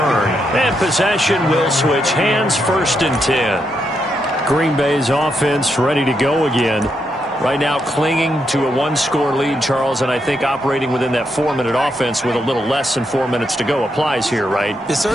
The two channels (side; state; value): both; normal; correlation 0.81